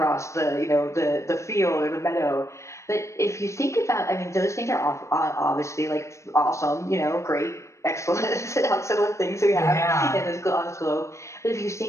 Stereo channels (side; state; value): right; late; 0.14 ms